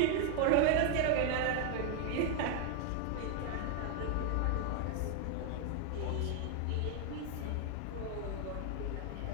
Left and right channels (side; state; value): both; different; correlation 0.00